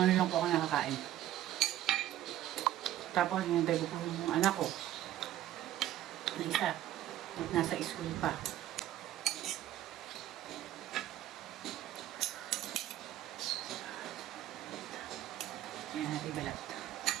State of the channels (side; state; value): left; quieter; 13.1 dB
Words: ngayon lang po ako nakakain. Tapos, hinintay ko po yung anak ko. Na isa. Nasa school pa. Ayan natin balat.